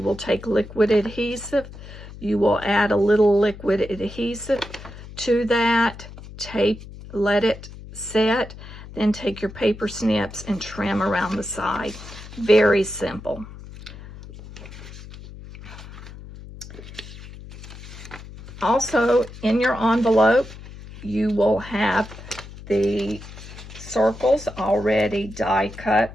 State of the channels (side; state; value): left; noise; hum, 15 dB below the sound